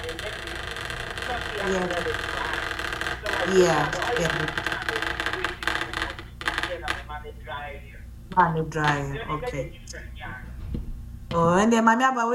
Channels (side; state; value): both; identical; correlation 1.00